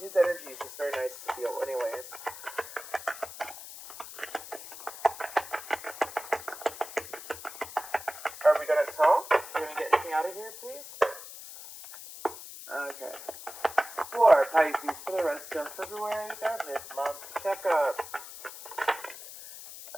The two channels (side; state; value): left; noise; hiss, 13 dB below the sound